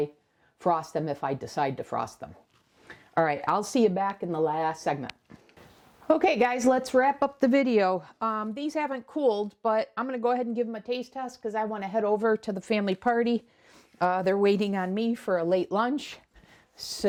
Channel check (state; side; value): identical; both; correlation 1.00